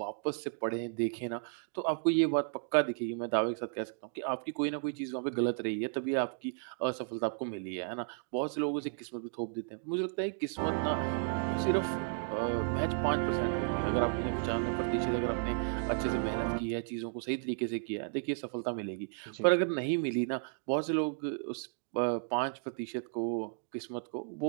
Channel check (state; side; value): silent; left; digital silence